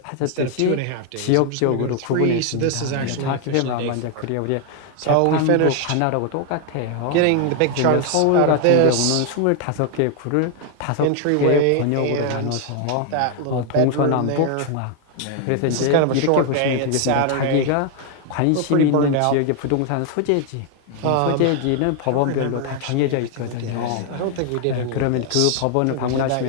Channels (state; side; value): different; both; correlation 0.00